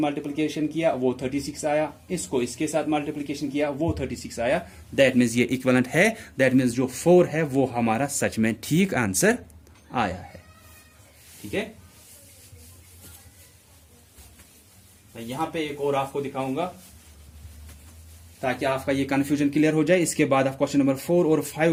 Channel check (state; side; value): identical; both; correlation 1.00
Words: मल्टीप्लिकेशन किया वो 36 आया, इसको इसके साथ मल्टीप्लिकेशन किया वो 36 आया। दैट मीन्स ये इक्विवेलेंट है, दैट मीन्स जो 4 है वो हमारा सच में ठीक आंसर आया है। ठीक है, मैं यहां पे एक और आपको दिखाऊंगा ताकि आपका ये कंफ्यूजन क्लियर हो जाए। इसके बाद आप क्वेश्चन नंबर 4 और 5